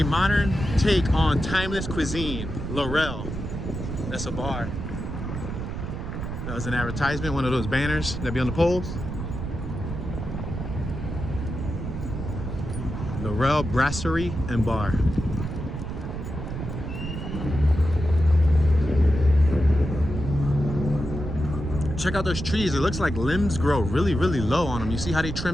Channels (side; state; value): right; noise; rumble, 6 dB below the sound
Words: modern take on timeless cuisine. Laurel. That's a bar. That was an advertisement, one of those banners that be on the poles. Laurel Brasserie and Bar. Check out those trees. It looks like limbs grow really, really low on them. You see how they